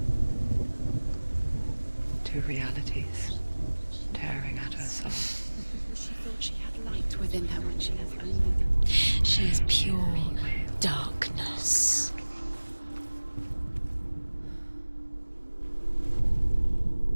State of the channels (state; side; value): inverted; both; correlation -1.00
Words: Two realities tearing at her soul. She thought she had light within her when she has only... She is pure darkness.